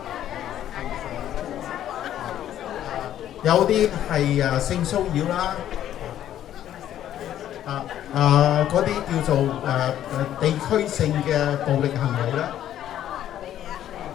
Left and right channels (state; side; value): quieter; right; 11.5 dB